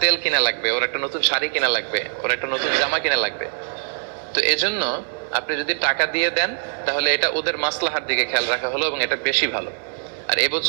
তেল কিনা লাগবে, ওর একটা নতুন শাড়ি কিনা লাগবে, ওর একটা নতুন জামা কিনা লাগবে। তো এজন্য আপনি যদি টাকা দিয়ে দেন তাহলে এটা ওদের মাসলাহার দিকে খেয়াল রাখা হলো এবং এটা বেশি ভালো। আর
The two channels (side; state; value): left; silent; digital silence